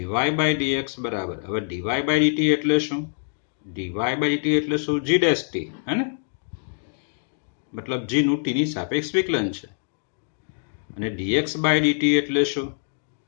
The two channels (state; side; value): silent; right; digital silence